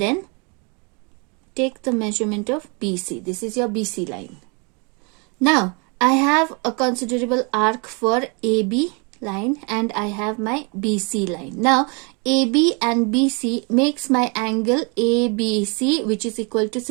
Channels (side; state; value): left; quieter; 32.9 dB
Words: take the measurement of BC. This is your BC line. Now I have a considerable arc for AB line and I have my BC line. Now AB and BC makes my angle ABC, which is equal to